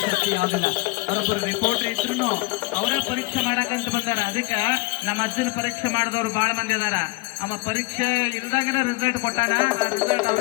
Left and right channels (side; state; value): right; quieter; 24.1 dB